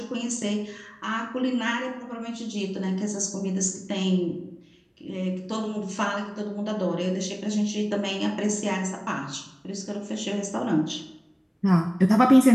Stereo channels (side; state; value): both; identical; correlation 1.00